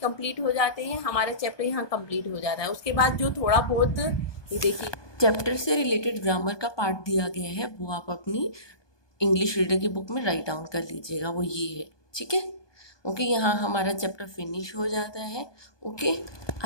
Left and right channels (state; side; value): late; right; 1.2 ms